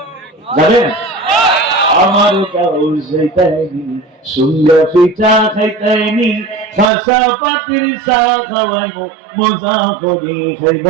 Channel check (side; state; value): left; drops out; at 6.9 s